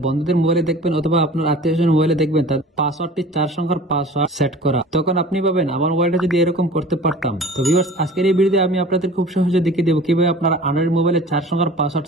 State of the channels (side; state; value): both; normal; correlation 0.42